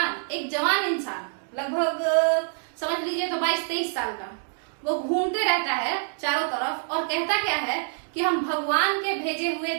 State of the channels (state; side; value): silent; left; digital silence